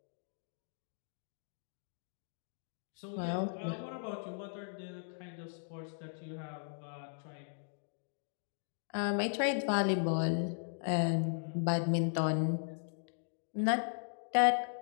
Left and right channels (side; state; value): right; silent; digital silence